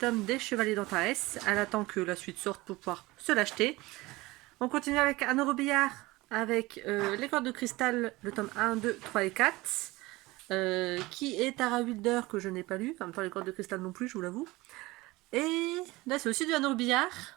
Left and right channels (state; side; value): quieter; left; 20.7 dB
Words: des Chevaliers d'Antares. Elle attend que la suite sorte pour pouvoir se l'acheter. On continue avec Anne Robillard, avec les cordes de cristal, le tome 1, 2, 3 et 4. Qui est Tara Wilder, que je n'ai pas lu. En même temps, les cordes de cristal non plus, je vous l'avoue. Et là, c'est aussi du Anne Robillard,